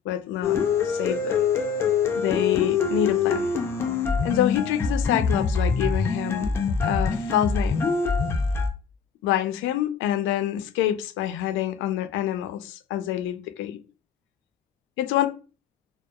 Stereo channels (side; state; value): right; quieter; 7.0 dB